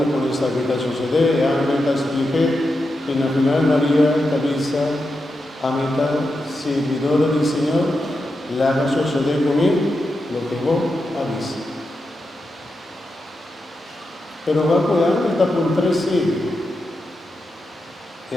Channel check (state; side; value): normal; both; correlation 0.88